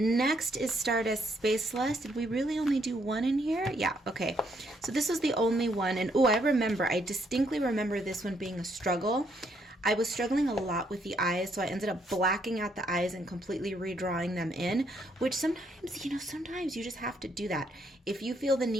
is Stardust Spaceless. Did we really only do one in here? Yeah, okay. So this was the only one. And oh, I distinctly remember this one being a struggle. I was struggling a lot with the eyes, so I ended up blacking out the eyes and completely redrawing them in, which sometimes you just have to do that. If you feel the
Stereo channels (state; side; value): normal; both; correlation 0.72